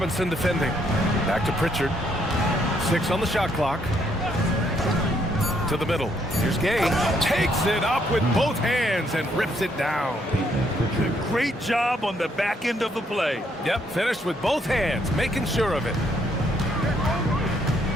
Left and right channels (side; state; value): both; normal; correlation 0.71